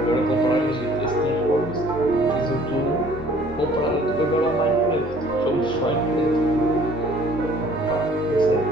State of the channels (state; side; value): normal; both; correlation 0.55